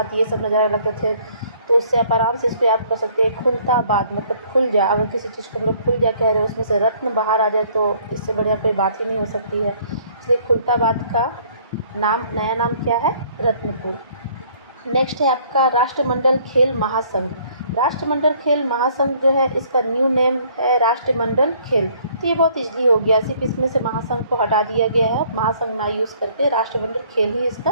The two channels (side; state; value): both; inverted; correlation -0.60